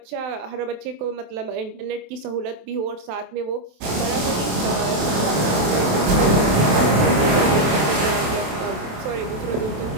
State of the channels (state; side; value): late; left; 27 ms